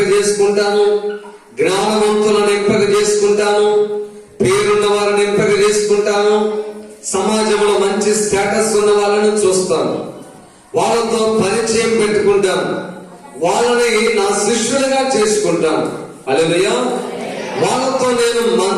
చేసుకుంటాను, జ్ఞానవంతులను ఎంపిక చేసుకుంటాను, పేరున్న వారిని ఎంపిక చేసుకుంటాను, సమాజంలో మంచి స్టేటస్ ఉన్న వాళ్ళని చూస్తాను, వాళ్ళతో పరిచయం పెట్టుకుంటాను, వాళ్ళని నా శిష్యులుగా చేసుకుంటాను. హల్లెలూయా. వాళ్ళతో నేను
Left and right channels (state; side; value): identical; both; correlation 1.00